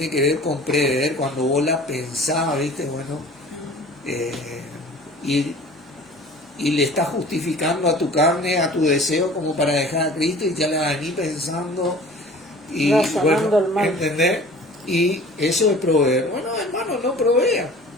que ver con prever, cuando vos la pensás, ¿viste? Bueno, y le estás justificando a tu carne, a tu deseo, como para dejar a Cristo, y ya la venís pensando y bueno, el mal. ¿entendés? Y eso es proveer. Bueno, hermano, no provea.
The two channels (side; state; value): both; normal; correlation 0.45